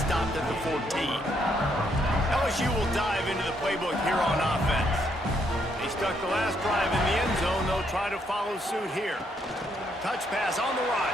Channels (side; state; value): both; normal; correlation 0.73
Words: at the 14. LSU will dive into the playbook here on offense. They stuck the last drive in the end zone. They'll try to follow suit here. Touch pass on the